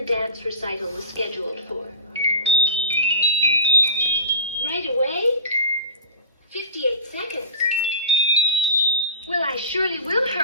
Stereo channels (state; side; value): inverted; both; correlation -0.30